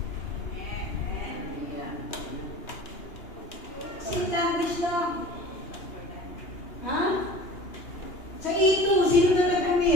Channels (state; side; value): late; right; 2.8 ms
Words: Sing language lang. Ha? Sa E2, sino na